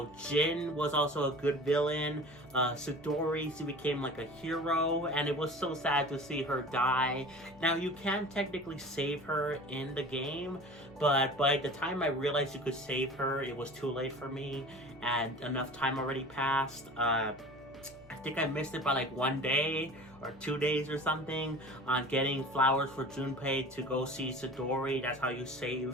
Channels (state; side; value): normal; both; correlation 0.39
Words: Jin was also a good villain. Sidori, she became like a hero, and it was so sad to see her die. Now, you can technically save her in the game, but by the time I realized you could save her, it was too late for me, and enough time already passed. I think I missed it by like 1 day or 2 days or something on getting flowers for Junpei to go see Sidori. That's how you